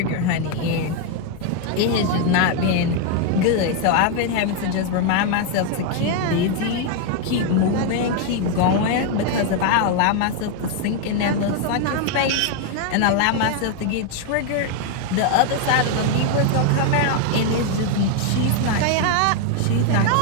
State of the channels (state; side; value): different; both; correlation 0.01